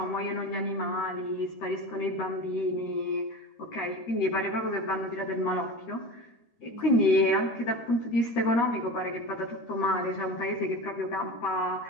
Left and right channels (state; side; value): late; right; 13 ms